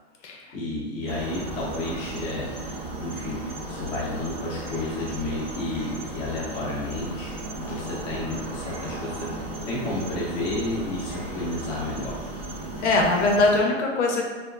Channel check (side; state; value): both; normal; correlation 0.23